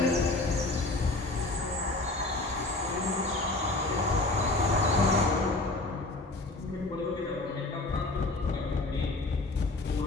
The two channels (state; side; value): quieter; right; 3.0 dB